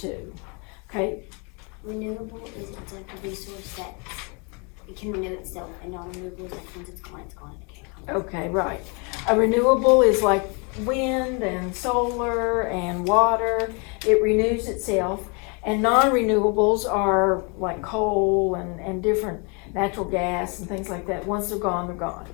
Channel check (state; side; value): quieter; right; 33.6 dB